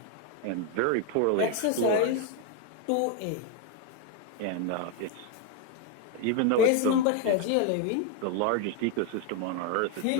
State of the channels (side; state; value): both; different; correlation 0.01